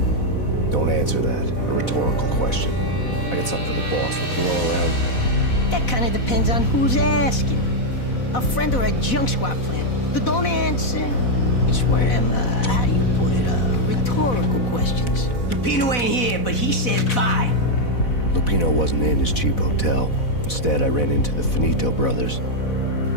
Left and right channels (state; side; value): late; right; 4.1 ms